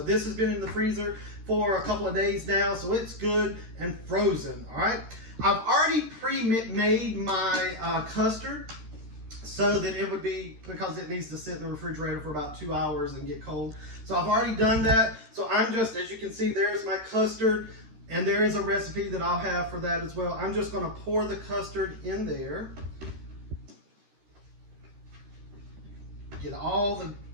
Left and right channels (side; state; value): left; late; 13 ms